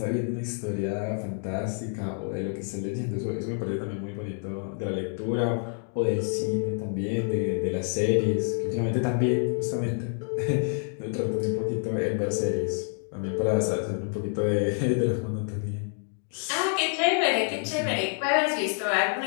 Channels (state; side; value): silent; right; 57 dB below the other